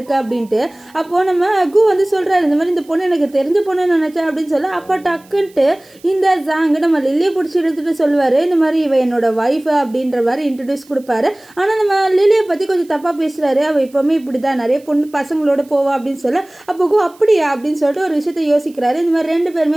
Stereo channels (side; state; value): right; noise; hiss, 28 dB below the sound